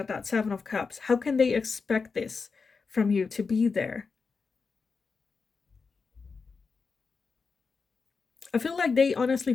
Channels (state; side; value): quieter; right; 4.9 dB